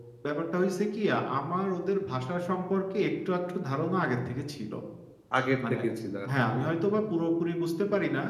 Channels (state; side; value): identical; both; correlation 1.00